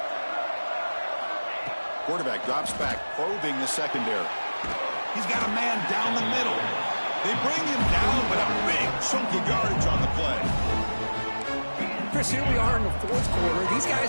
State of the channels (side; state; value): both; inverted; correlation -1.00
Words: Quarterback drops back, probing the secondary. He's got a man down the middle. They bring him down, but a big chunk of yardage on the play. Chris, here we are in the 4th quarter. These